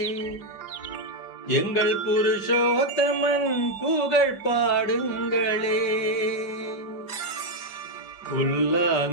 எங்கள் புருஷோத்தமன் புகழ் பாடுங்களே.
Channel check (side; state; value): right; late; 4.9 ms